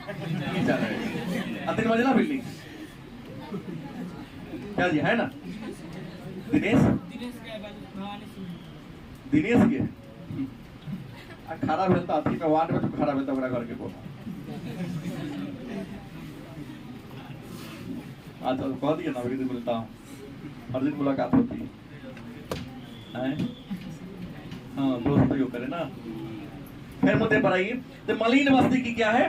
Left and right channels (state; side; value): identical; both; correlation 1.00